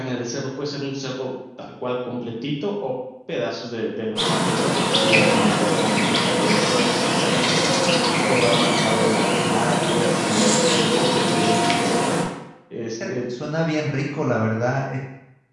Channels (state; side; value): identical; both; correlation 1.00